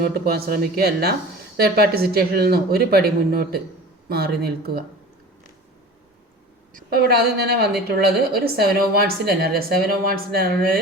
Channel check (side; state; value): both; normal; correlation 0.38